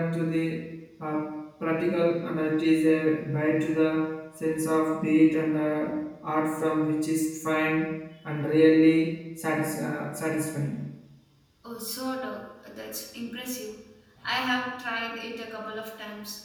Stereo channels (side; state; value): both; identical; correlation 1.00